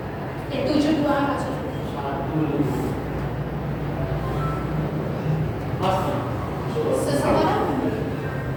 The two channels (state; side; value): identical; both; correlation 1.00